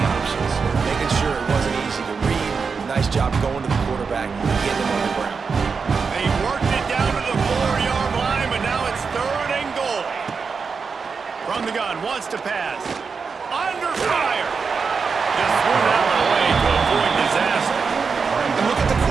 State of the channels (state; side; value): quieter; left; 5.3 dB